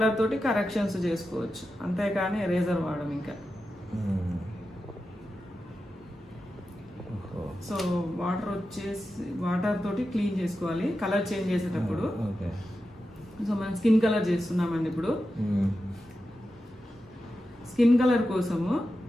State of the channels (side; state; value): both; normal; correlation 0.91